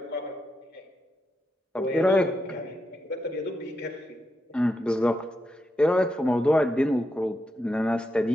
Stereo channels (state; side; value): normal; both; correlation 0.85